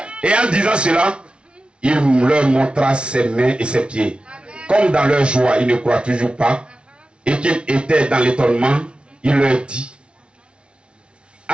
Et en disant cela, il leur montra ses mains et ses pieds. Comme dans leur joie, ils ne croient toujours pas, et qu'ils étaient dans l'étonnement, il leur dit,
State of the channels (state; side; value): late; left; 0.058 ms